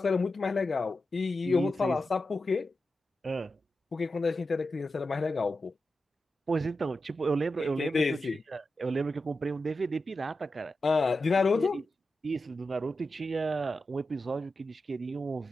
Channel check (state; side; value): normal; both; correlation 0.90